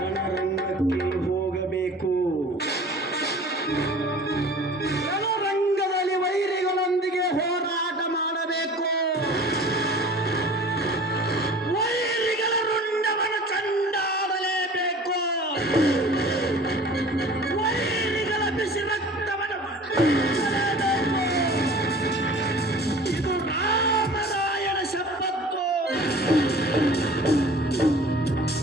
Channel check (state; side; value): normal; both; correlation 0.44